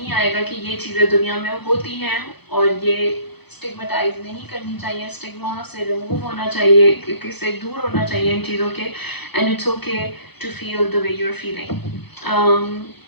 آئے گا کہ یہ چیزیں دنیا میں ہوتی ہیں اور یہ اسٹگمٹائز نہیں کرنی چاہیے, اسٹگما سے ریموو ہونا چاہیے, اس سے دور ہونا چاہیے ان چیزوں کے. And it's okay to feel the way you are feeling.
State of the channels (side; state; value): right; late; 0.98 ms